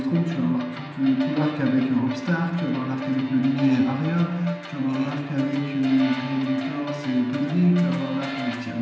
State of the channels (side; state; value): both; identical; correlation 1.00